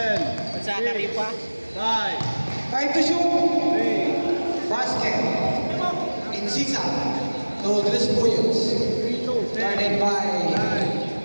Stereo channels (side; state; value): both; inverted; correlation -1.00